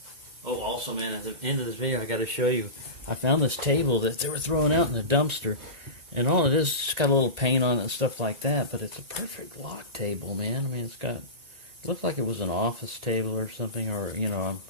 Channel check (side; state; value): left; late; 1.8 ms